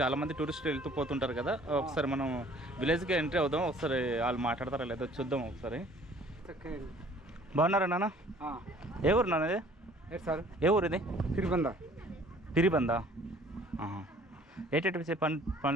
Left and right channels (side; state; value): both; normal; correlation 0.54